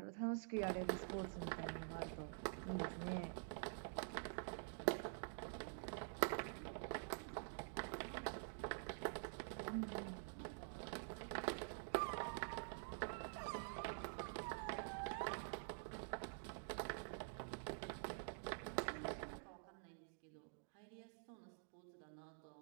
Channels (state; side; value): silent; left; digital silence